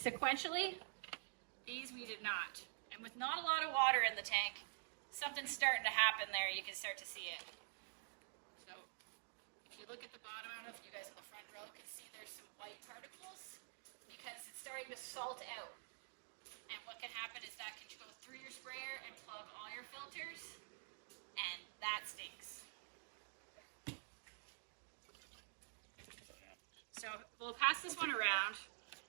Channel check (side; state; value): left; silent; digital silence